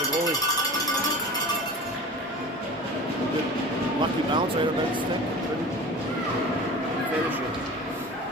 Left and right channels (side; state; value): both; normal; correlation 0.37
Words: goalie. Good lucky bounce right on Bennett's stick. Couldn't finish